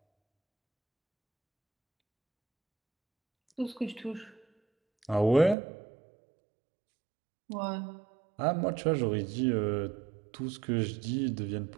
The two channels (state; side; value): drops out; left; at 5.6 s